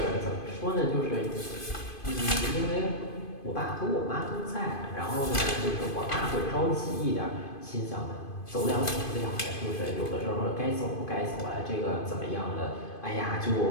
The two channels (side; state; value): right; late; 2.5 ms